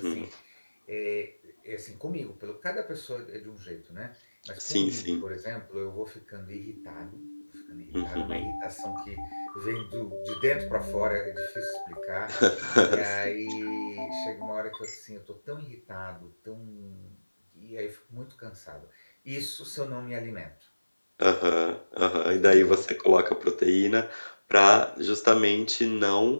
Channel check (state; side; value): inverted; both; correlation -1.00